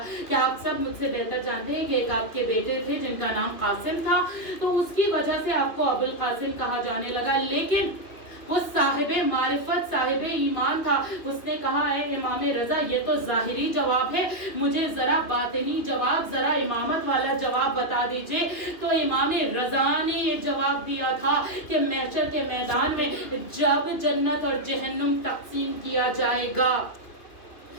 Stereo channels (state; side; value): late; right; 2.9 ms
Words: کہ آپ سب مجھ سے بہتر جانتے ہیں کہ ایک آپ کے بیٹے تھے جن کا نام قاسم تھا, تو اس کی وجہ سے آپ کو ابو القاسم کہا جانے لگا. لیکن وہ صاحب معرفت صاحب ایمان تھا, اس نے کہا اے امام رضا یہ تو ظاہری جواب ہے, مجھے ذرا باطنی جواب, ذرا امامت والا جواب بتا دیجئے. تو امام رضا نے یہ جواب دیا تھا کہ محشر کے میدان میں جب جنت اور جہنم تقسیم کیا جائے گا